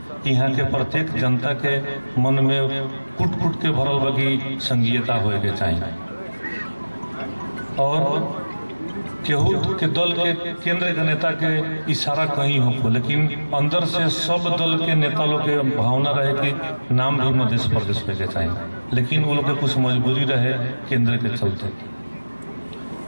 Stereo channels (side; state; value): both; inverted; correlation -1.00